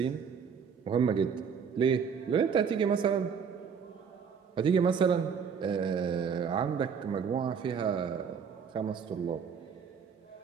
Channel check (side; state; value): left; quieter; 6.7 dB